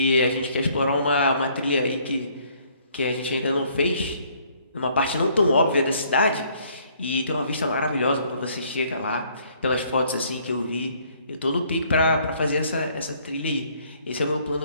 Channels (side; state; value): both; inverted; correlation -0.63